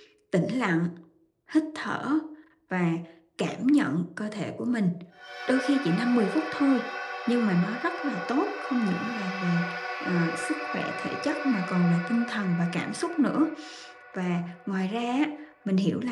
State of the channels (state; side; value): identical; both; correlation 1.00